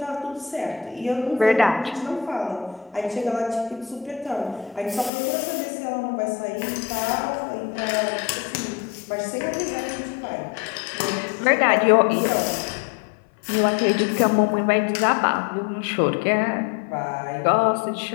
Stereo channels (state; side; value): drops out; right; at 5.1 s